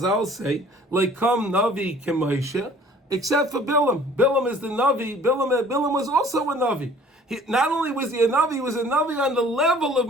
say, like come navi k'Moshe, except for Balaam. Balaam is the navi. Balaam was also a navi. Not only was he a navi on the level of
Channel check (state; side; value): normal; both; correlation 0.52